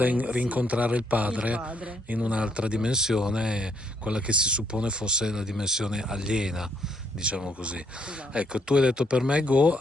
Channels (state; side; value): normal; both; correlation 0.71